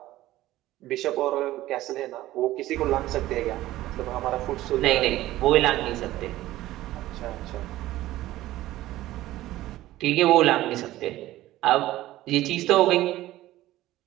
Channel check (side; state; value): left; quieter; 15.7 dB